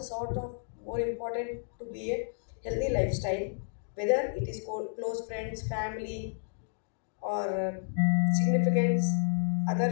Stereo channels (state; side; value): silent; right; digital silence